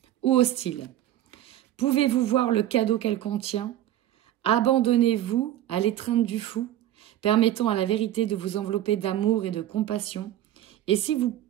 ou hostile. Pouvez-vous voir le cadeau qu'elle contient? Abandonnez-vous à l'étreinte du fou, permettant à la vérité de vous envelopper d'amour et de compassion. Et si vous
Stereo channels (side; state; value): left; quieter; 12.8 dB